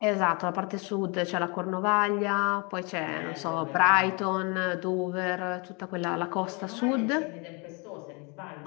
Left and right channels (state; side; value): quieter; right; 31.3 dB